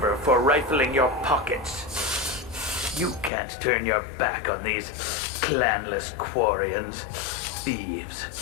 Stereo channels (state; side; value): drops out; right; at 3.3 s